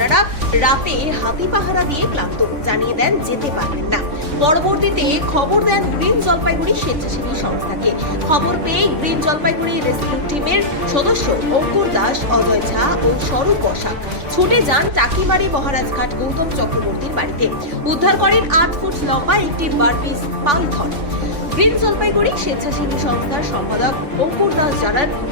রাতে হাতি পাহারা দিয়ে ক্লান্ত, জানিয়ে দেন যেতে পারবেন না। পরবর্তীতে খবর দেন গ্রিন জলপাইগুড়ি স্বেচ্ছাসেবী সংস্থাকে। খবর পেয়ে গ্রিন জলপাইগুড়ি রেস্কিউ টিমের সদস্য অঙ্কুর দাস, অজয় ঝা ও স্বরূপ বসাক ছুটে যান টাকিমারি মহারাজঘাট গৌতম চক্রবর্তীর বাড়িতে। উদ্ধার করেন 8 ফুট লম্বা একটি বারপিস পাইথন। গ্রিন জলপাইগুড়ি স্বেচ্ছাসেবী সংস্থার সম্পাদক অঙ্কুর দাস জানান,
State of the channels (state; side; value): late; left; 3.6 ms